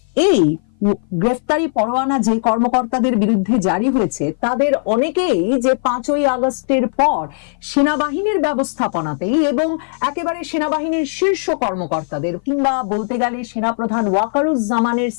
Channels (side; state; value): right; silent; 57 dB below the other